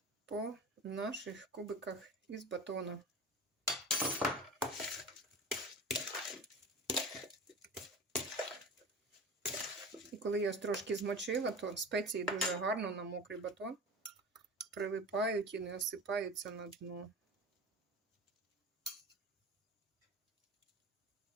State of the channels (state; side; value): normal; both; correlation 0.33